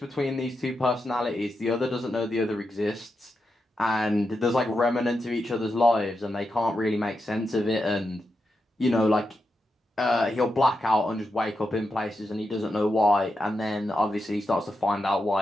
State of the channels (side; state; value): both; normal; correlation 0.87